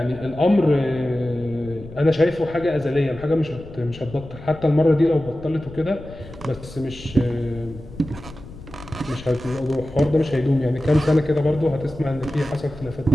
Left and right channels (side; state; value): left; noise; rumble, 16 dB below the sound